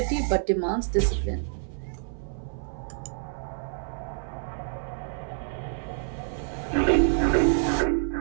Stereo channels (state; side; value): silent; left; 60 dB below the other